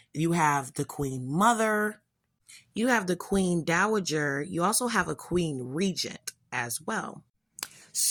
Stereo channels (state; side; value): identical; both; correlation 1.00